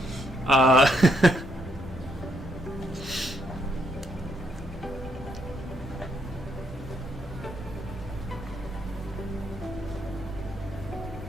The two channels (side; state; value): both; normal; correlation 0.75